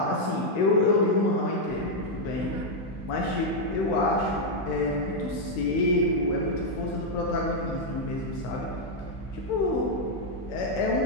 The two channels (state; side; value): late; right; 16 ms